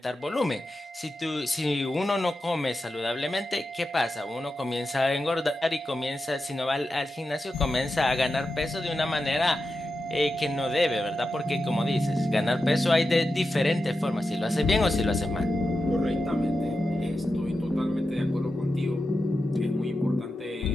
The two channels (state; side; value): normal; both; correlation 0.90